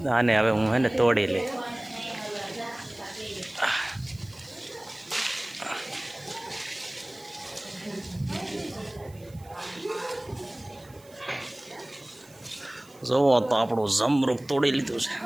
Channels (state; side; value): noise; right; hiss, 25 dB below the sound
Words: આને હવે હું હે ને તોડી લે. જોવો તો આપણું જમરૂક તોડી લીધું છે.